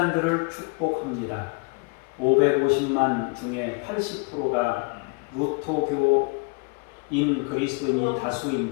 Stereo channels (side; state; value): right; quieter; 33.0 dB